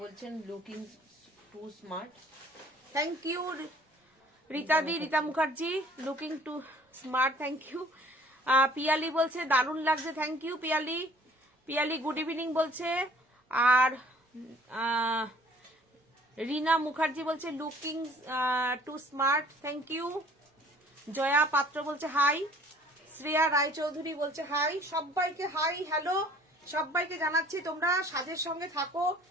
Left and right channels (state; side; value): normal; both; correlation 0.54